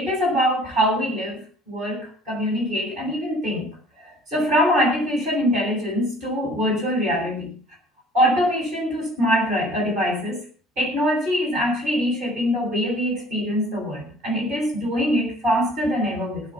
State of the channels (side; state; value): both; normal; correlation 0.52